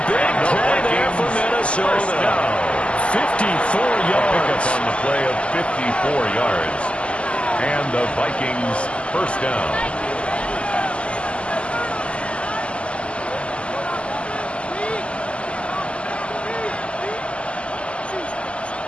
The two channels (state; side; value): late; right; 0.055 ms